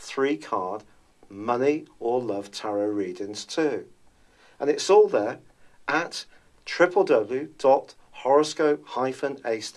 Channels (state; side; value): identical; both; correlation 1.00